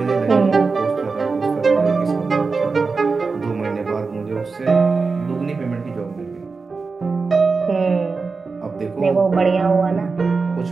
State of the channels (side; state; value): left; quieter; 4.4 dB